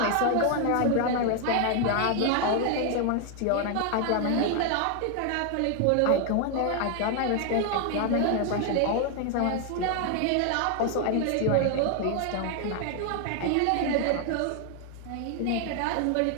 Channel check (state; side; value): different; both; correlation 0.00